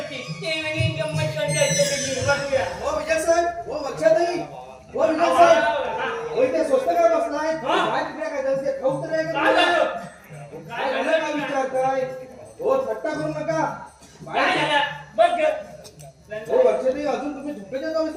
ते नवीन गंमत करूया. हो विजय साहेब, हो वर्षाताई, हो विजय साहेब. होय ते स्वस्त काय बसलाय? हा? काय तिकडे काय झालं? ते खाऊ तर नाही काय का? झालं? काय झालं काय विचारताय? हो थट्टा करू नका. काय झालं? बघ ग. हो वर्षाताई, अजून तुम्ही झोपेच्या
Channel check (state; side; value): identical; both; correlation 1.00